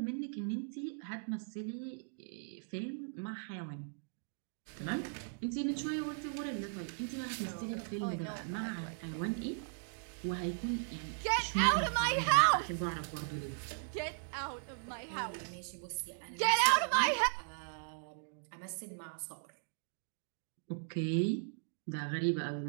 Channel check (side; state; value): left; silent; digital silence